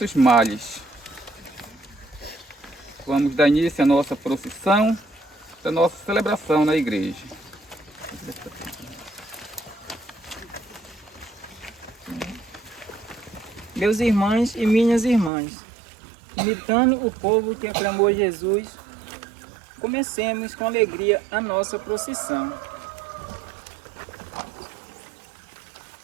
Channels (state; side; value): drops out; left; at 15.3 s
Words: males. Vamos dar início à nossa procissão, da nossa celebração na igreja. Meus irmãos e minhas irmãs, imitando o povo que aclamou Jesus, comecemos com alegria a nossa procissão.